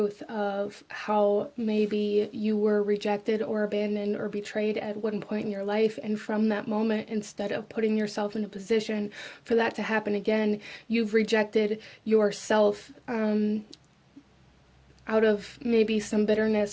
of how maybe you were rejected or abandoned or betrayed at one point in your life, and from that moment, instead of putting yourself in a position for that to happen again, you've rejected yourself out of maybe some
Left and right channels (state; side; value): identical; both; correlation 1.00